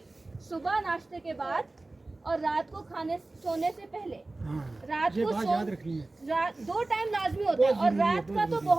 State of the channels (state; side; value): quieter; left; 3.0 dB